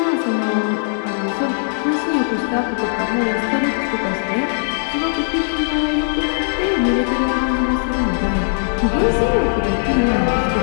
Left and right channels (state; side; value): silent; right; 67 dB below the other